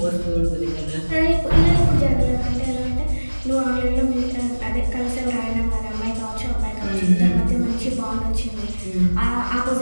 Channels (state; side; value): inverted; both; correlation -1.00